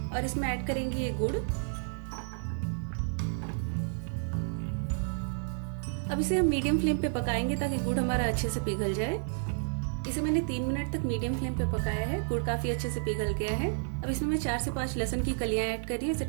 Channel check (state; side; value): silent; left; 57 dB below the other